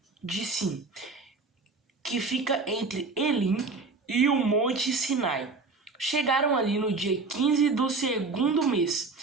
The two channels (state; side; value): quieter; left; 4.0 dB